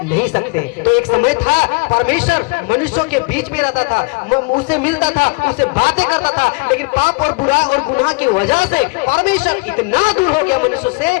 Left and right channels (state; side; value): quieter; right; 29.7 dB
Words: नहीं सकते। तो एक समय था परमेश्वर मनुष्यों के बीच में रहता था, उससे मिलता था, उससे बातें करता था, लेकिन पाप और बुरा और गुनाह की वजह से परमेश्वर इतना दूर हो गया मनुष्य